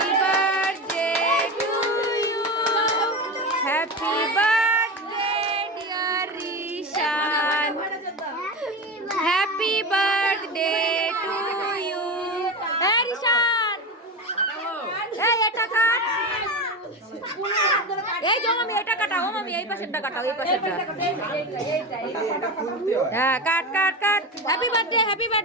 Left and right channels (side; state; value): both; normal; correlation 0.22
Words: birthday to you, happy birthday dear Rishan, happy birthday to you. হ্যাঁ রিশান এই এটা কাট, এই যে মামি এটা কাটাও, মামি এই পাশেরটা কাটাও, এই পাশেরটা। হ্যাঁ cut cut cut. Happy birthday happy